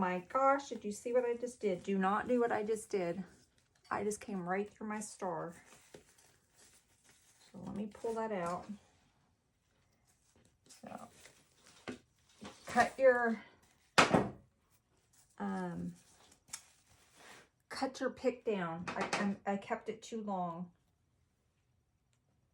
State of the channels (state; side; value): identical; both; correlation 1.00